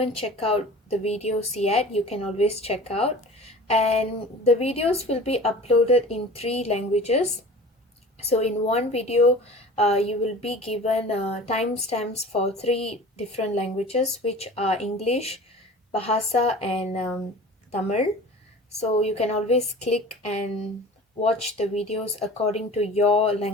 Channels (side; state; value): both; normal; correlation 0.40